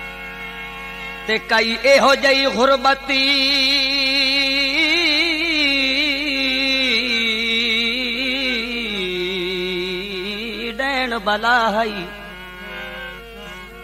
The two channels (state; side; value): identical; both; correlation 1.00